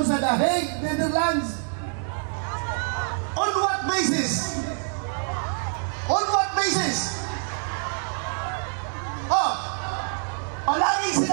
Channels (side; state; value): left; silent; 55 dB below the other